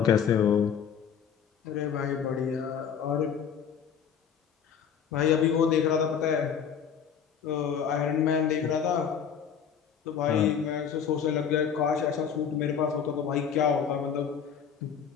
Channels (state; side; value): quieter; right; 7.6 dB